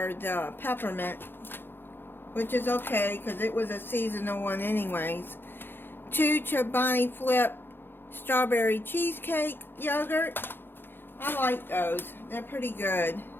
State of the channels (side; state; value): right; late; 0.10 ms